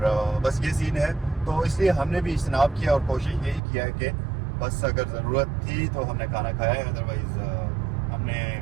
बस ये सीन है, तो इसलिए हमने भी इज्तनाब किया और कोशिश यही किया है कि बस अगर ज़रूरत थी तो हमने खाना खाया है, अदरवाइज़ हमने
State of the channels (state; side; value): drops out; left; at 3.6 s